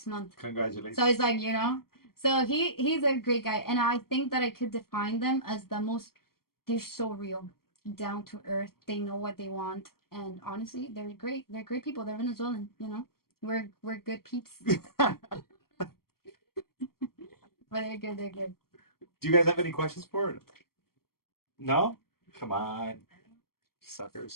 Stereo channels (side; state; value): right; late; 0.93 ms